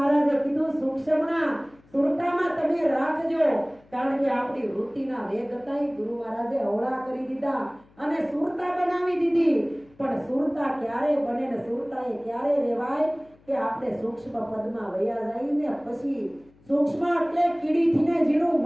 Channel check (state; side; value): noise; left; hum, 29 dB below the sound